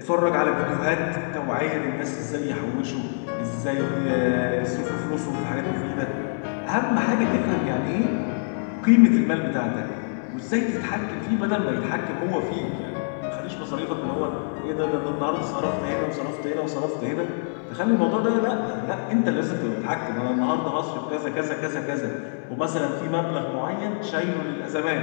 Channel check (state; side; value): silent; right; digital silence